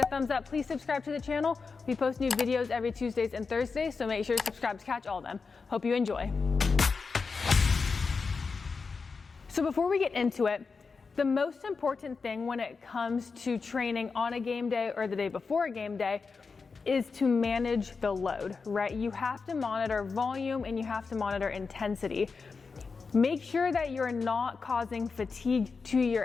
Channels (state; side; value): quieter; right; 4.8 dB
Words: a thumbs up. Please subscribe to the channel. We post new videos every Tuesdays and Thursdays, so make sure to subscribe to catch all of them. Hope you enjoy. So before we get into it, the most important thing when it comes to training on a game day or the day before a game day is to manage the load, right? You have to monitor volume and you have to monitor intensity. Make sure that you're not causing fatigue to